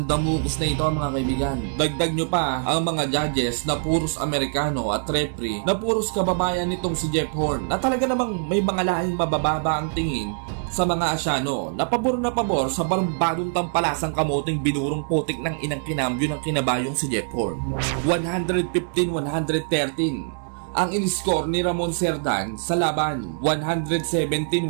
damukus na ito mga kaibigan. Dagdag nyo pa ang mga judges na puros Amerikano at referee na puros kababayan nitong si Jeff Horn na talaga namang may mga lahing mabababa ang tingin sa mga Asyano na pabor sa barumbadong tampalasang kamoting binurong putik ng inang kinambyo ng kinabayong si Jeff Horn. 115-113 ang in-score ni Ramon Cerdan sa laban,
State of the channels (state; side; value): silent; left; digital silence